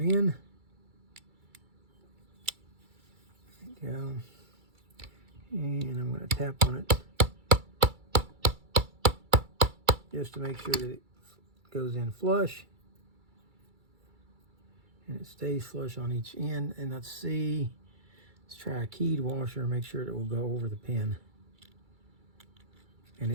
in. There we go. And I'm going to tap on it just to make sure that it goes in flush. And it stays flush on each end. And let's see, let's try a keyed washer and make sure that it will go over the pin. And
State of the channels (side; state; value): left; late; 2.3 ms